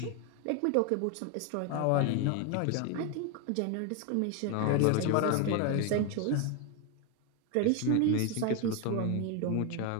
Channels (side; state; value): both; different; correlation 0.01